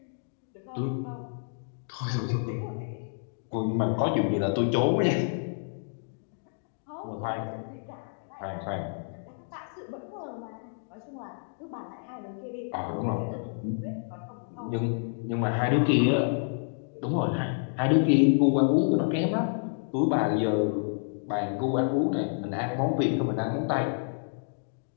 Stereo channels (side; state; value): right; silent; digital silence